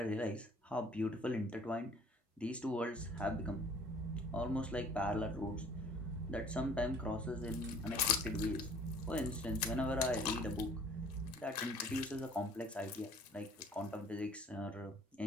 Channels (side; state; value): both; normal; correlation 0.53